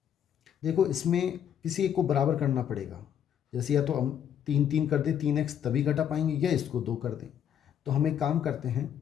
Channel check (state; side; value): quieter; right; 9.2 dB